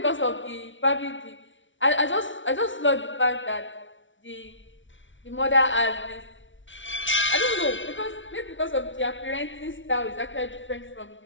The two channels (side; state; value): right; late; 0.56 ms